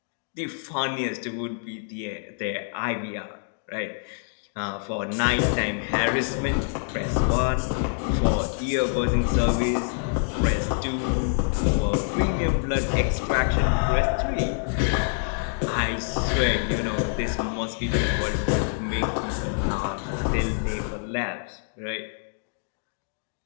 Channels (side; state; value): right; silent; digital silence